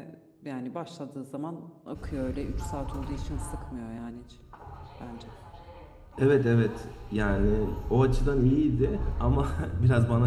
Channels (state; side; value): identical; both; correlation 1.00